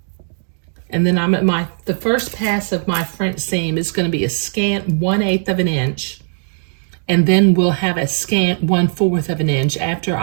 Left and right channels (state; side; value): silent; left; 67 dB below the other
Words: And then I'm at the first pass of my French seam is going to be a scant 1/8 of an inch. And then we'll have a scant 1/4 of an inch after